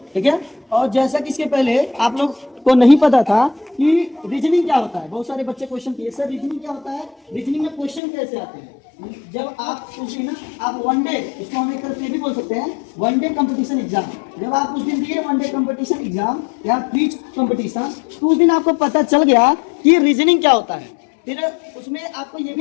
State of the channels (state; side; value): drops out; right; at 8.0 s